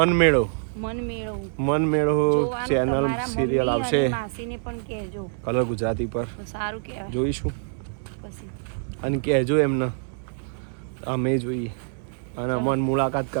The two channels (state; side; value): silent; left; digital silence